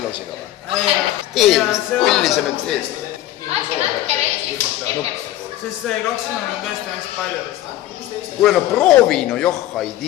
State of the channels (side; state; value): right; quieter; 14.2 dB